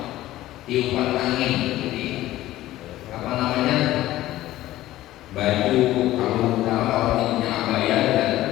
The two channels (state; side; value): quieter; right; 15.3 dB